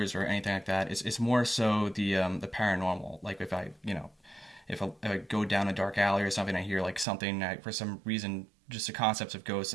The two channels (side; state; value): left; drops out; at 7.1 s